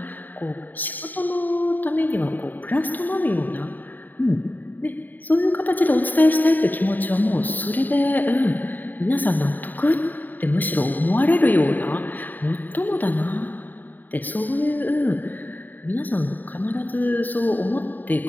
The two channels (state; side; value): late; right; 0.088 ms